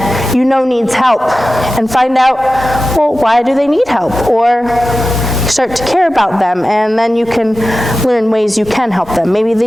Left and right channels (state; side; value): normal; both; correlation 0.94